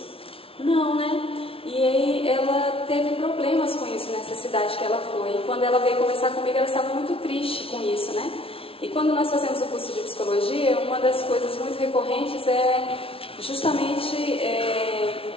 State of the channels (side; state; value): right; late; 0.26 ms